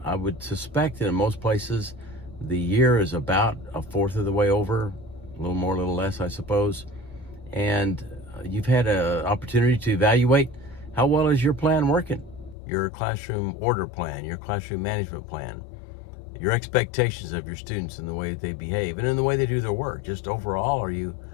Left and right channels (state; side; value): drops out; right; at 12.6 s